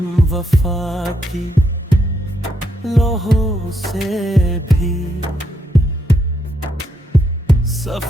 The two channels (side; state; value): both; normal; correlation 0.78